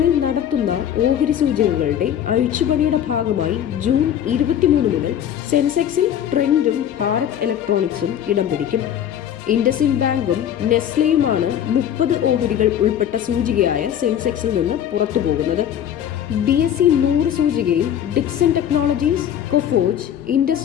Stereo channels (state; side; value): quieter; right; 10.0 dB